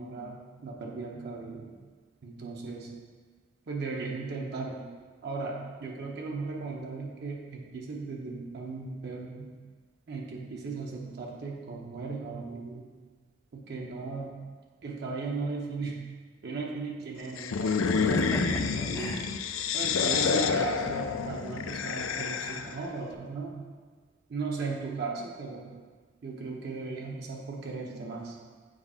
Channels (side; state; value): both; normal; correlation 0.26